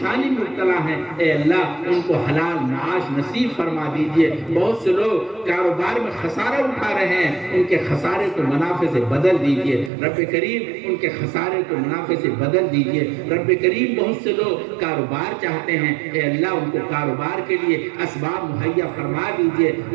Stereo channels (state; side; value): drops out; left; at 9.9 s